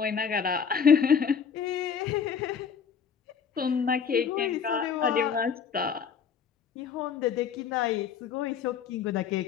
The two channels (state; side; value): quieter; right; 6.9 dB